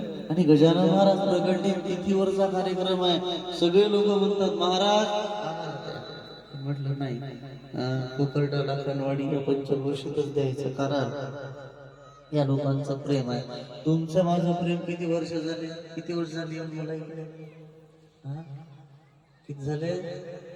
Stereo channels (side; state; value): both; identical; correlation 1.00